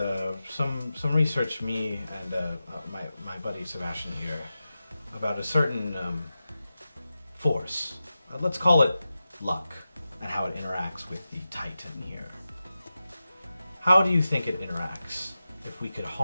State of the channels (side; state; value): both; inverted; correlation -0.93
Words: some research me and my buddy Sebastian here about a certain force. Let's call it luck, and how it interacts with the Titan here. How do you think it interacts if we could